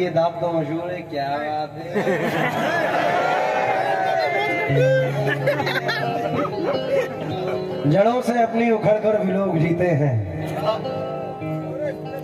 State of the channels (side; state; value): both; identical; correlation 1.00